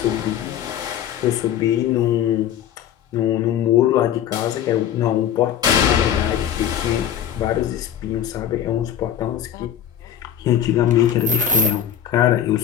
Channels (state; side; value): quieter; right; 10.0 dB